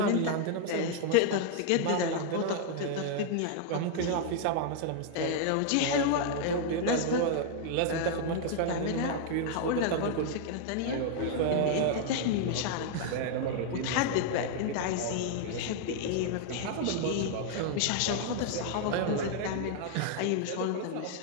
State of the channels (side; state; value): both; different; correlation 0.00